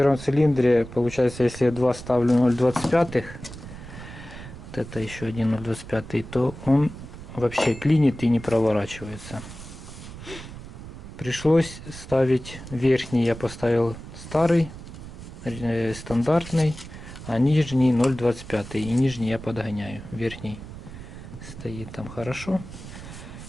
цилиндре, получается, если я 2 ставлю 0,25, вот это еще один 0,25, то он вообще клинит и не проворачивается. Пришлось ставить верхний, я поставил старый, стандартный, а нижний 0,25. И нижний я подгоняю. Верхний стоит там хорошо.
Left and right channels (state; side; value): noise; right; rumble, 13 dB below the sound